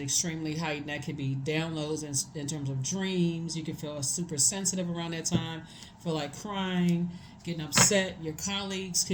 heightened. That could be downloads in terms of dreams. You can feel super sensitive around that time, feel like crying, getting upset. Your colleagues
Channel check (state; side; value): identical; both; correlation 1.00